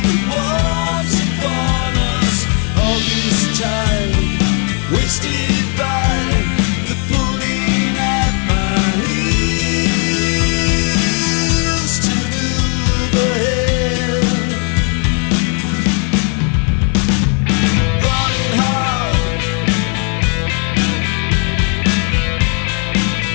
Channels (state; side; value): quieter; right; 39.7 dB